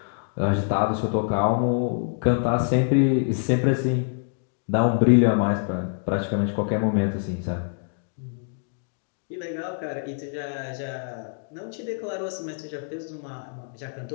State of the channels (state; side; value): silent; right; digital silence